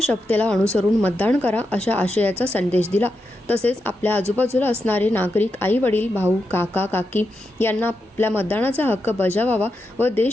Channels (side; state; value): both; normal; correlation 0.86